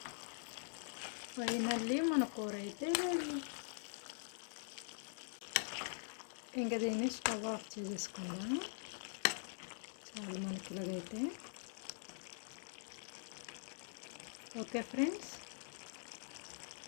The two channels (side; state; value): right; silent; digital silence